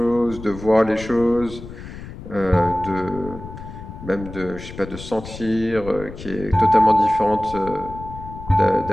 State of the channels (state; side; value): noise; left; rumble, 13 dB below the sound